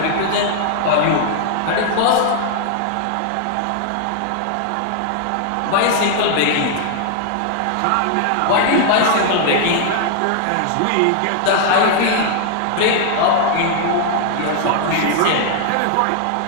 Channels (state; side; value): different; both; correlation 0.00